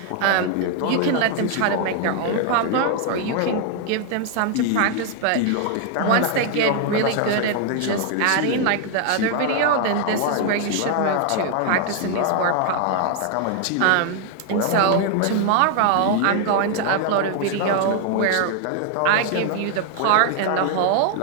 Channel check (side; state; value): both; different; correlation 0.00